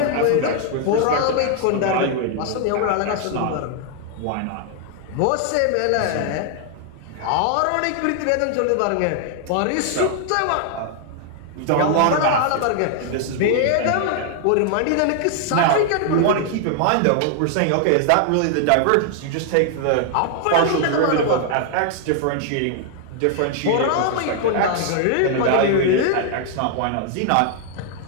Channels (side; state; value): both; different; correlation 0.00